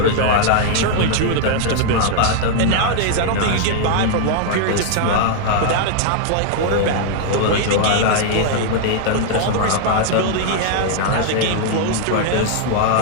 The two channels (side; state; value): both; different; correlation 0.00